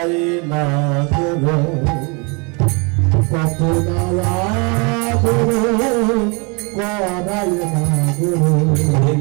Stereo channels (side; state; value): left; quieter; 31.6 dB